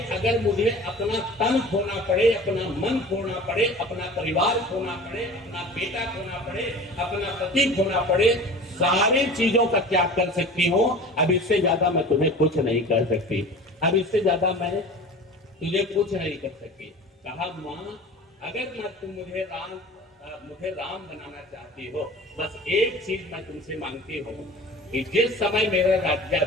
अगर मुझे अपना तन खोना पड़े, अपना मन खोना पड़े, अपना परिवार खोना पड़े, अपना बेटा खोना पड़े, अपना पति खोना पड़े, सारी चीजों का त्याग कर सकती हूँ। अब इससे ज्यादा मैं तुम्हें कुछ नहीं कर सकती, अब इससे ज्यादा मैं तुझे कुछ नहीं कर सकती। कहा माँ, अगर तुम मुझे राम बनाना चाहती हो, बस एक चीज मैं तुमसे मांगती हूँ कि जिस समय मेरा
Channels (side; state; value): both; normal; correlation 0.39